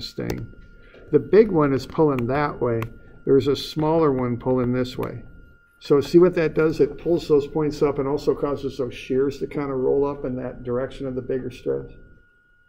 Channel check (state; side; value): identical; both; correlation 1.00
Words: thing. The big one is pulling that way. There's a smaller one pulling this way. So see what that does? It pulls those points up and also causes those shears to kind of roll up in that direction of the bigger stress.